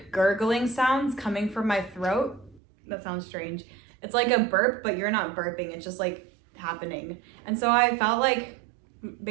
gurgling sounds coming from my throat. That sounds strange. It's like a burp, but you're not burping. It's just like happening. And so I felt like,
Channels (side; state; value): left; drops out; at 2.6 s